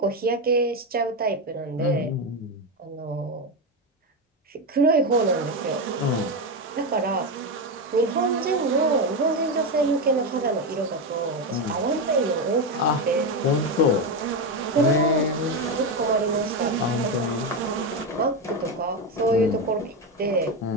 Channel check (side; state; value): both; normal; correlation 0.12